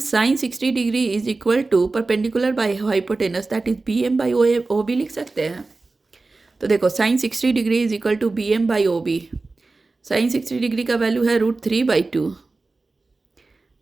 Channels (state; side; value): quieter; left; 3.6 dB